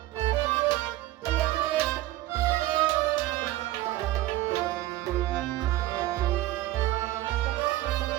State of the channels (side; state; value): left; quieter; 16.0 dB